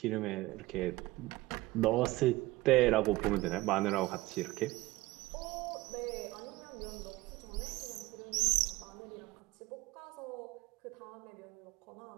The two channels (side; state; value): left; quieter; 19.6 dB